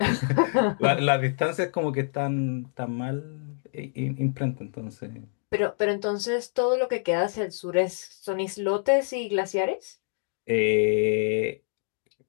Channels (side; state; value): right; silent; digital silence